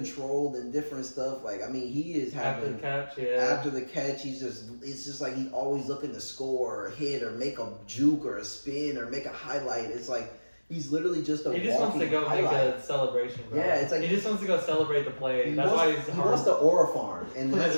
and different stuff. He is having after the catch, it's just he's always looking to score or hit or make a juke or a spin or make a highlight. It's he's literally just a. He just wants to go make a celebration, bro. Yeah, it's he just wants to go celebrate the play. That's why he wants the aura farm, and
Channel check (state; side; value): inverted; both; correlation -1.00